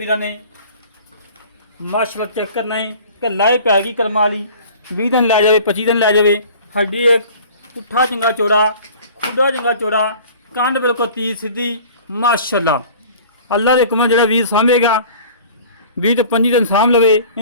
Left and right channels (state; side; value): inverted; both; correlation -0.45